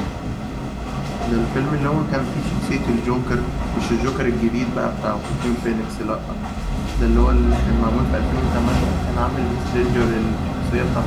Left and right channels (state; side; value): identical; both; correlation 1.00